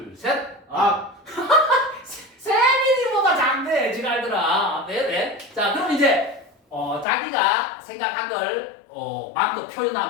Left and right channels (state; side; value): drops out; right; at 7.1 s